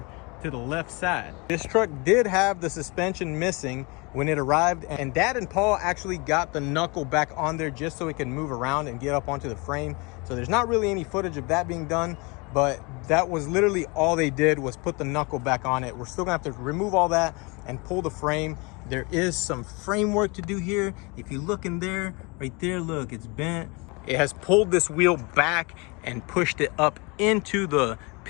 to the left side. This truck did have the suspension missing when it arrived, and Dad and Paul actually got the knuckle back on there just so it can move around and get up onto the frame. So there's not really any footage of that being done, but that was literally all they did was put the knuckle back on it. We're still gonna have to remove all that and pull the frame. There is some framework to do here. If you look in there, right there, look, it's bent. It has pulled this wheel back and pushed it up into the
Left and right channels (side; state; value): right; quieter; 28.3 dB